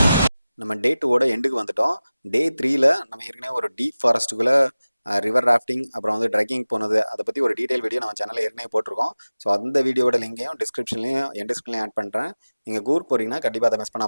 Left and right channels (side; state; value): both; inverted; correlation -0.97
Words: நம்ம டே 2ஓட எண்டுக்கு வந்துட்டோம். டே 3ல் நம்ம ஏற்கனவே ஒரு டீப் ஃபாரஸ்ட்டுக்குள்ளே ரிவர் ராஃப்டிங் அப்புறம் வந்து ட்ரெக்கிங் போனது அதை பற்றி ஒரு டீட்டெயில் வீடியோ நம்ம சேனலில் ஏற்கனவே போட்டிருக்கோம். ஸோ அந்த வீடியோட லிங்கையும் டிஸ்கிரிப்ஷன்லையும் என் டிஸ்கிரிப்ஷன்லையும் ஆட் பண்ணுறேன். நீங்கள் கூர் போகிறீங்கன்னா கண்டிப்பாக அதை மிஸ்